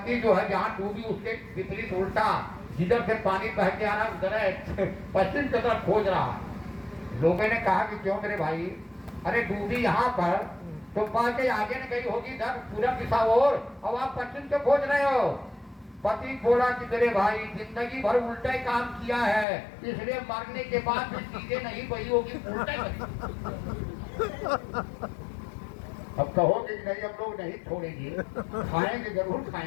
जो है जहाँ डूबी उसके विपरीत उल्टा, जिधर से पानी बह के आ रहा उधर पश्चिम की तरफ खोज रहा। लोगों ने कहा कि क्यों मेरे भाई, अरे डूबी यहाँ पर तो बाकी आगे न गई होगी इधर पूरब दिशा और आप पश्चिम से खोज रहे हो। पति बोला कि मेरे भाई जिंदगी भर उल्टा ही काम किया है, इसलिए मरने के बाद भी चीजें नहीं बही होगी, उल्टा ही। अब कहोगे कि नहीं हम लोग नहीं छोड़ेंगे, खाएंगे जरूर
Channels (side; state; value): right; drops out; at 19.5 s